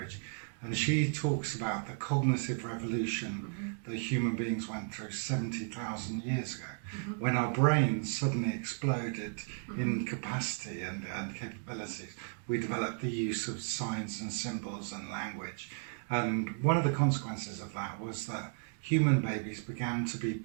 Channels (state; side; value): silent; left; 55 dB below the other